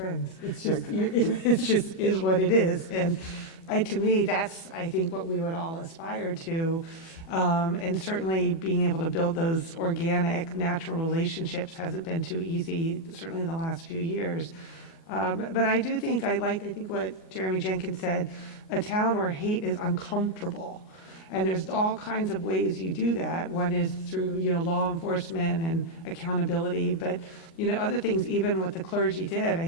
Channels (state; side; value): late; right; 29 ms